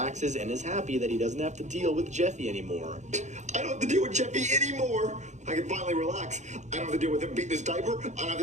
and is happy that he doesn't have to deal with Jeffy anymore. I don't have to deal with Jeffy anymore. I can finally relax. I don't have to deal with him beating his diaper. I don't have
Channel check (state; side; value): late; left; 0.34 ms